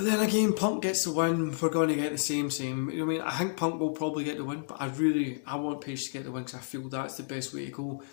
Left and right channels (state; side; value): silent; right; digital silence